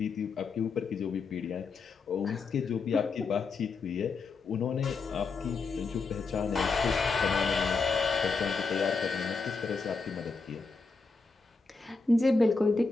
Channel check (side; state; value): right; quieter; 4.4 dB